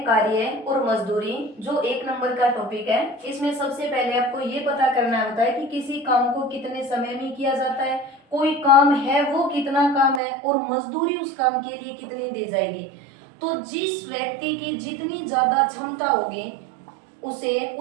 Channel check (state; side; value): drops out; left; at 10.2 s